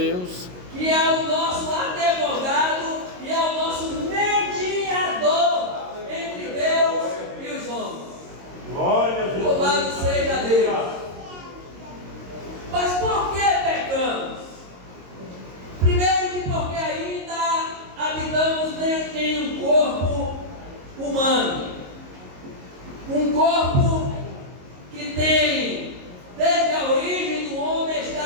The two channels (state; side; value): late; left; 22 ms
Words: Que é o nosso advogado e é o nosso mediador entre Deus e os homens. Glória a Deus. Louvado seja Deus. Mas por que pecamos? Primeiro que porque ainda habitamos em um corpo humano. Um corpo que tem, desde a origem do homem,